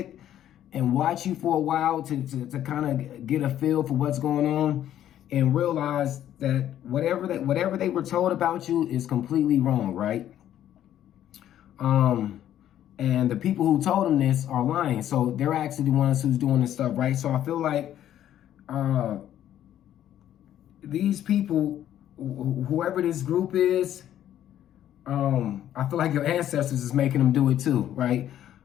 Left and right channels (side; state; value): right; quieter; 11.4 dB